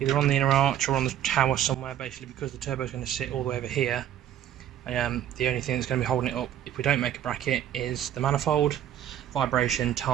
on the tower somewhere, basically because the turbo is going to sit all the way over here. The only thing that's going to be holding it up if we don't make a bracket is the manifold. Vibration,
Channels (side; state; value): left; quieter; 10.9 dB